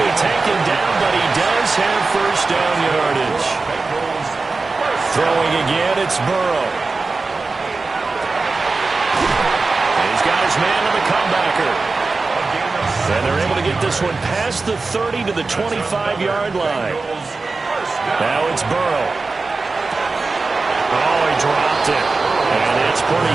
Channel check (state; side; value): quieter; left; 3.8 dB